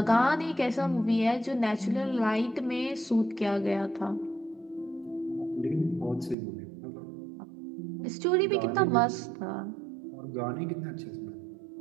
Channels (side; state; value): left; drops out; at 6.4 s